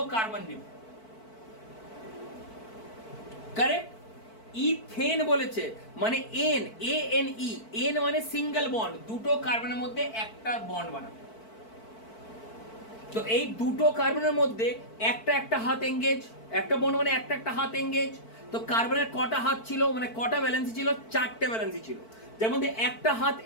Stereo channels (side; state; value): right; late; 4.5 ms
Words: কার্বন নেবে, কারেক্ট। ইথেন বলেছে মানে এন, ANE, এন মানে সিঙ্গেল বন্ড, দুটো কার্বনের মধ্যে একটা বন্ড বানাবে। তো এই দুটো কার্বনের মধ্যে একটা একটা হাত এঙ্গেজ, একটা বন্ড মানে একটা একটা হাত এঙ্গেজ। তো কার্বনের কটা হাত ছিল, মানে কটা ভ্যালেন্সি ছিল? চারটে ভ্যালেন্সি ছিল, যার মধ্যে একটা হাত